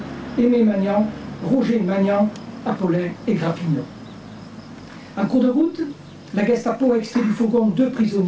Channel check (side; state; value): both; identical; correlation 1.00